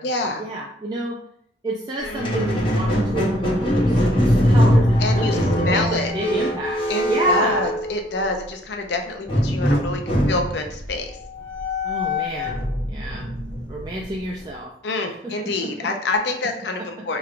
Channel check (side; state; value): both; normal; correlation 0.59